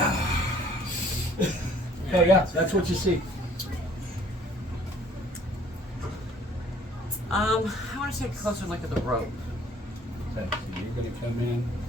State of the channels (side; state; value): both; normal; correlation 0.57